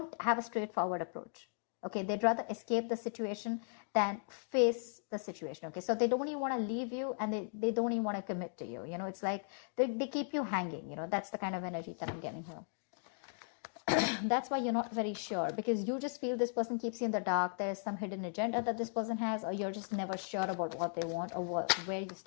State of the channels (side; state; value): right; silent; digital silence